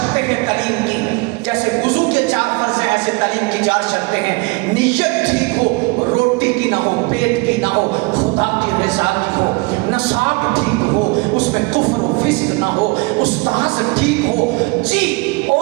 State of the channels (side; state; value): left; quieter; 27.4 dB